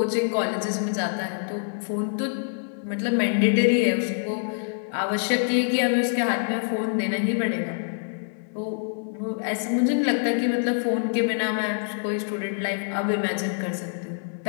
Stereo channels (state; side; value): silent; right; 61 dB below the other